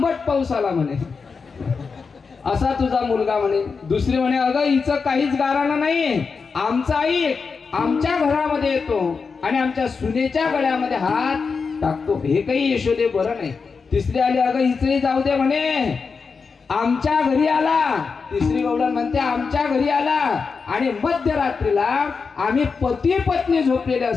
पाऊस आला म्हणे. असा तुझा मुलगा म्हणे. दुसरी म्हणे अगं हिचं काहीच गाराणं नाही, आमचा आई आमच्या घरामध्ये येतो आणि आमच्या सुनेच्या गळ्यामध्ये हात टाकतो, हे काही यशोदे बरं नाही. तिसरी आली अगं हिचंही जाऊ दे म्हणे, आमच्या घरी आला. तिसरी गवळण म्हणते आमच्या घरी आला आणि मध्यरात्रीला आम्ही पती पत्नी झोपलेले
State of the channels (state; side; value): quieter; right; 5.1 dB